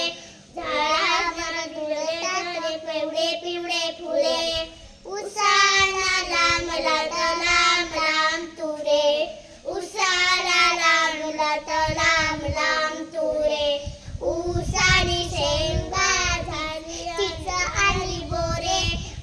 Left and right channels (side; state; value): both; identical; correlation 1.00